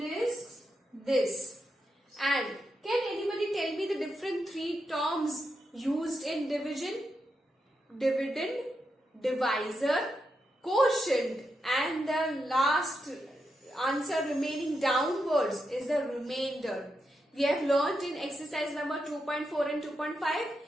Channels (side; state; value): both; normal; correlation 0.85